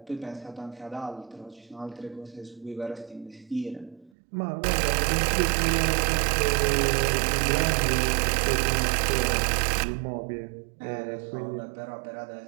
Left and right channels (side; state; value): left; drops out; at 4.1 s